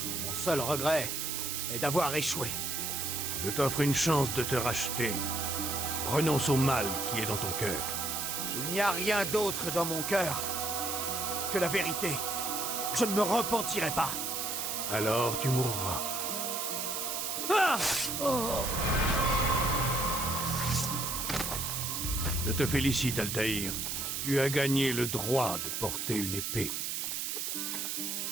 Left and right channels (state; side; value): noise; right; hiss, 2 dB below the sound